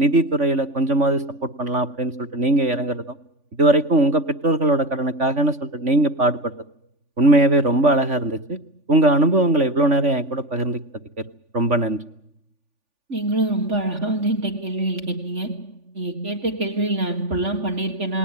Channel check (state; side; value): late; left; 3.5 ms